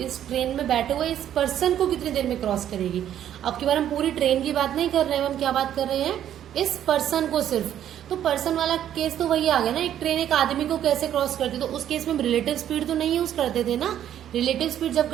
इस ट्रेन में बैठे हुए इस पर्सन को कितनी देर में क्रॉस करेगी। अब की बार हम पूरी ट्रेन की बात नहीं कर रहे हैं, हम क्या बात कर रहे हैं, इस पर्सन को सिर्फ। तो पर्सन वाला केस तो वही आ गया ना, एक ट्रेन एक आदमी को कैसे क्रॉस करती, तो उस केस में रिलेटिव स्पीड तो नहीं यूज करते थे ना। रिलेटिव स्पीड जब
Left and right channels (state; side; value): quieter; left; 10.7 dB